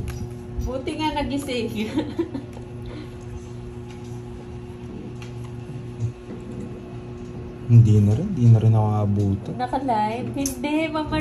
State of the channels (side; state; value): both; identical; correlation 1.00